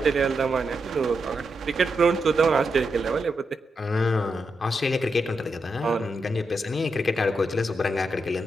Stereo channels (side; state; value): both; normal; correlation 0.84